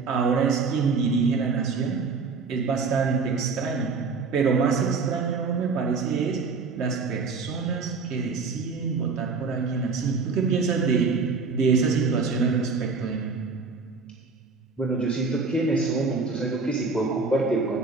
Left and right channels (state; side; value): quieter; left; 4.6 dB